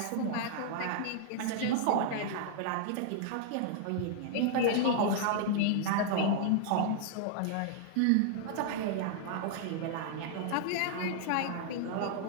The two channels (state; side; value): different; both; correlation -0.01